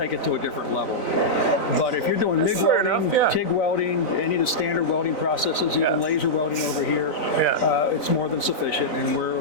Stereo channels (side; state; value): right; late; 3.9 ms